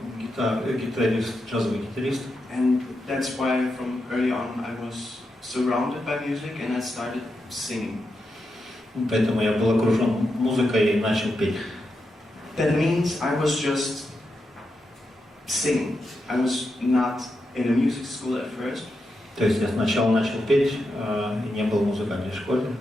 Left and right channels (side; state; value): both; normal; correlation 0.86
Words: гитарист, джазовый гитарист. And that's why from early on I was surrounded by music and I started singing. Поэтому я был окружен музыкой и начал петь. that means I was just singing. I was not in a music school at first. То есть я сначала начал петь и не был в музыкальной школе.